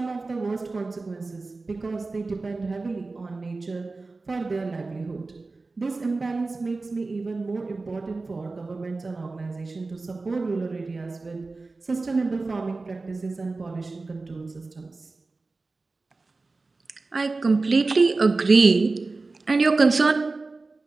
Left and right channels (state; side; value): quieter; left; 3.6 dB